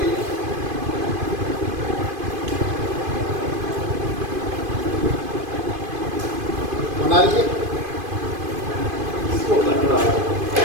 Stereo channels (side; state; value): left; late; 2.5 ms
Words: बना लीजिए। इसको